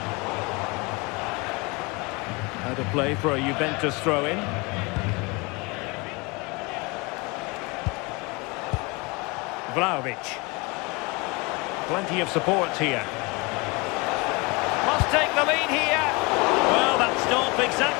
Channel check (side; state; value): right; quieter; 27.0 dB